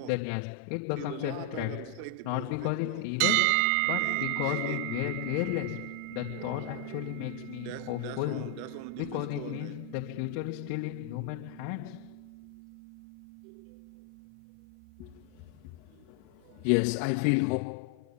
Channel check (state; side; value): different; both; correlation 0.00